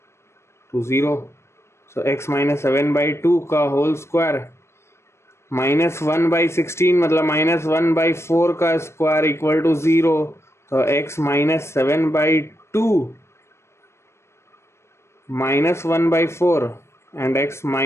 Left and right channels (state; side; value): late; right; 0.13 ms